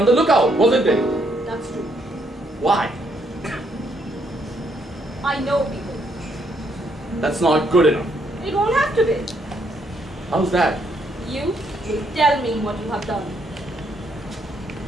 the lookout, wasn't it? That's true. Why? I know people. That's not good enough. It won't have to be. How's that? You will tell me what you have done.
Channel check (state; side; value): normal; both; correlation 0.73